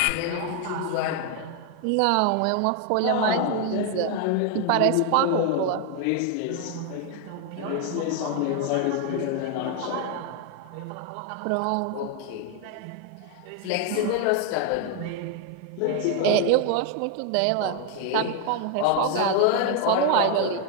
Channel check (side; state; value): both; different; correlation 0.01